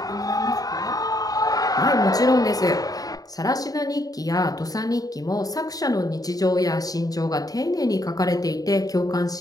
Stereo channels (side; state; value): right; late; 0.18 ms